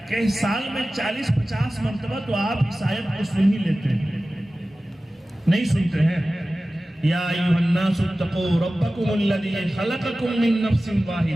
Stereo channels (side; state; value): both; normal; correlation 0.96